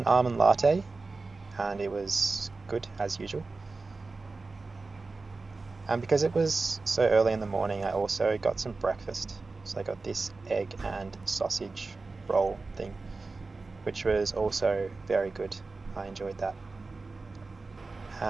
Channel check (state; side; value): quieter; left; 3.8 dB